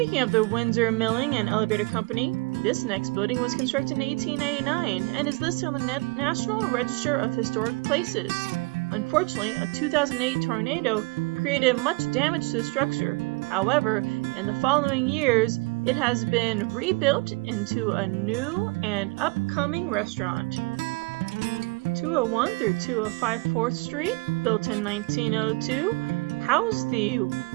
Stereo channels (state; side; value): quieter; left; 27.5 dB